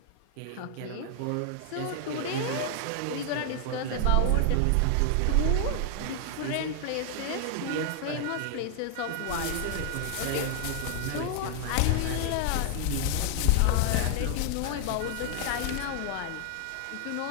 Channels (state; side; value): different; both; correlation 0.00